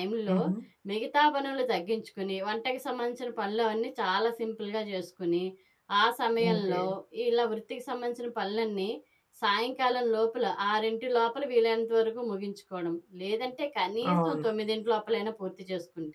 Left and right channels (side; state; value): both; identical; correlation 1.00